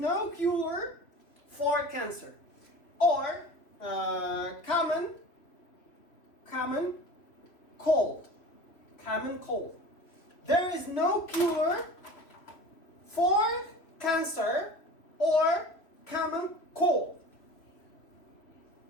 cure for cancer. Or common cold. Common cold. There is no cure for cancer or common cold.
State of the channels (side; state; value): right; late; 3.0 ms